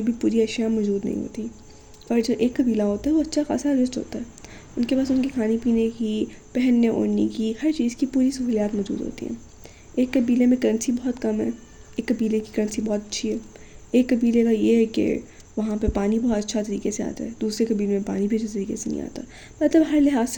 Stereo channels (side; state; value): both; identical; correlation 1.00